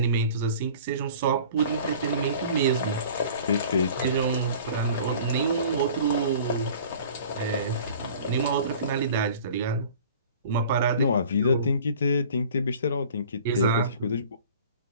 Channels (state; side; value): inverted; both; correlation -0.45